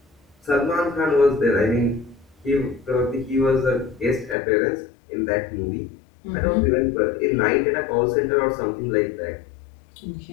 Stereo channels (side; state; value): right; drops out; at 4.4 s